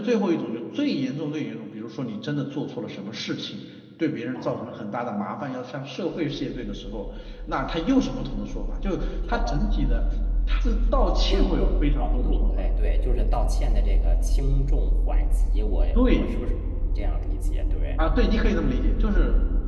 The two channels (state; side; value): identical; both; correlation 1.00